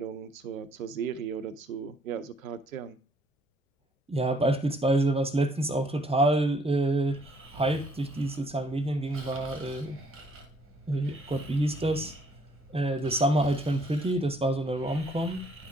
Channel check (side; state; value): both; normal; correlation 0.65